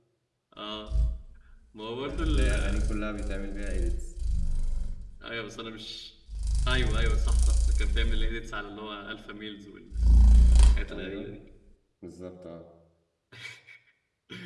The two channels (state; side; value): identical; both; correlation 1.00